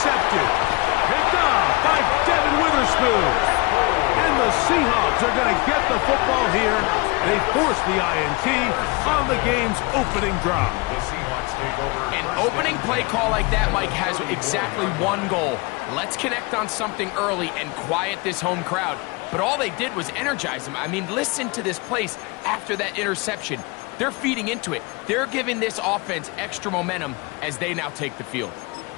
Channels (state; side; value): quieter; right; 26.8 dB